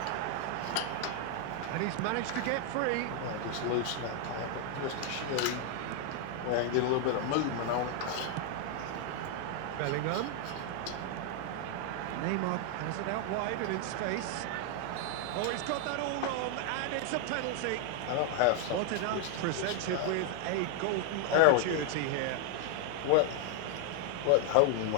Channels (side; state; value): both; different; correlation 0.00